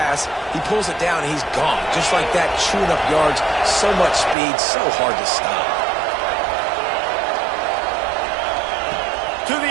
He pulls it down, and he's gone. Just like that, chewing up yards. So much speed, so hard to stop. To the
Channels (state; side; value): drops out; left; at 4.4 s